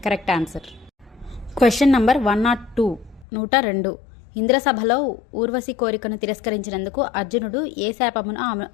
Correct answer. Question number 102. 102. ఇంద్రసభలో ఊర్వశి కోరికను తిరస్కరించినందుకు అర్జునుడు ఏ శాపమును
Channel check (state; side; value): drops out; right; at 3.2 s